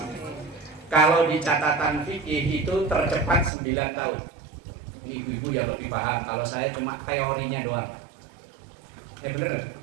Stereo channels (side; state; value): left; drops out; at 3.5 s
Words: Kalau di catatan fikih itu tercepat 9 tahun. Ini ibu-ibu yang lebih paham. Kalau saya cuma teorinya doang. Bener nggak?